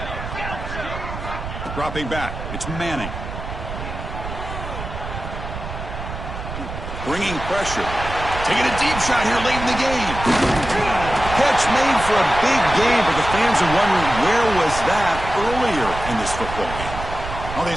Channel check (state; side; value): noise; right; rumble, 8 dB below the sound